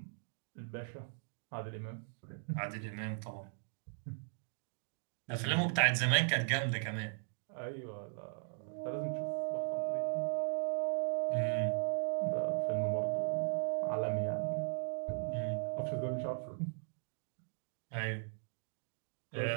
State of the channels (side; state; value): left; silent; digital silence